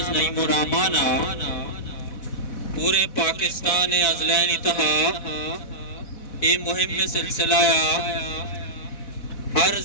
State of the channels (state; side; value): late; right; 4.1 ms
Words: نعیم الرحمان پورے پاکستان ازلین اتحا یہ مہم میں سلسلہ ہر